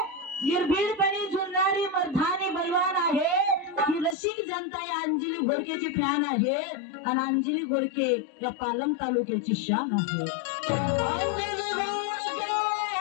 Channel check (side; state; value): right; drops out; at 4.2 s